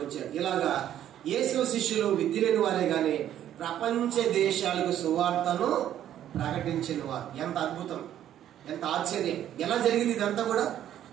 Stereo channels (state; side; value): quieter; left; 11.2 dB